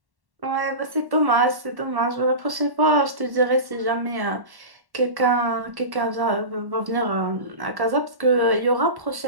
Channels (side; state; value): left; late; 1.1 ms